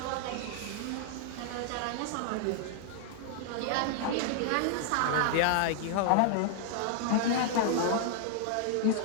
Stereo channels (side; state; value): both; different; correlation -0.01